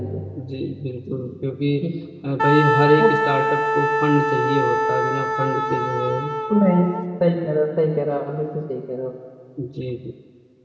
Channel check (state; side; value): identical; both; correlation 1.00